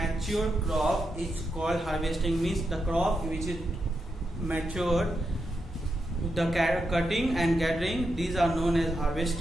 crop is called harvesting. Means the crop which is matured, the cutting and gathering, these are known as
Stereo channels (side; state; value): both; normal; correlation 0.85